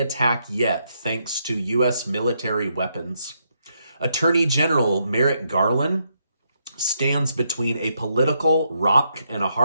yet, thanks to U.S. military weapons. Attorney General Merrick Garland stands between a political rock and a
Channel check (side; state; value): both; inverted; correlation -0.78